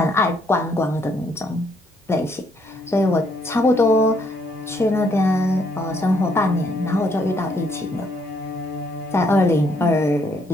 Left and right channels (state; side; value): normal; both; correlation 0.70